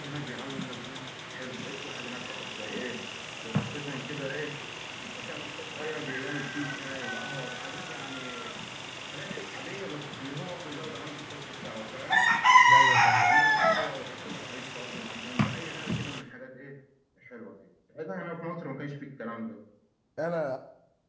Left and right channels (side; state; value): both; identical; correlation 1.00